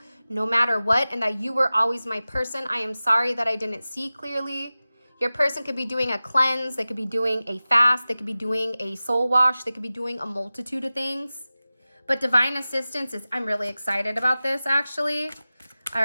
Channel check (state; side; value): inverted; both; correlation -0.96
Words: no matter what and that you were always my person. I am sorry that I didn't see clearly. Your person could be doing a cleanse. They could be doing a fast. They could be doing a soul wash. They could be doing a multitude of things. But divine assistance is, I'm really excited about this actually. All